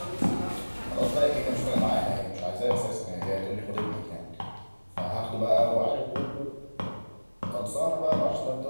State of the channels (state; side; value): inverted; both; correlation -1.00